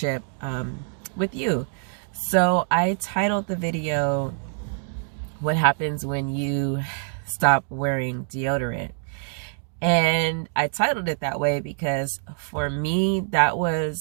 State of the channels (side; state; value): left; silent; 62 dB below the other